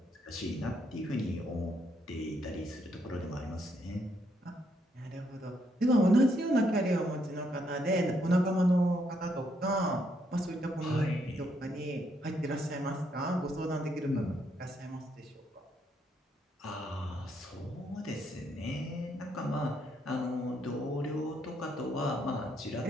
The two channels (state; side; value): normal; both; correlation 0.74